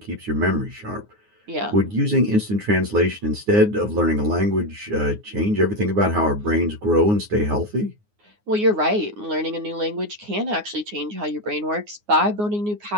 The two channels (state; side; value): late; left; 9.6 ms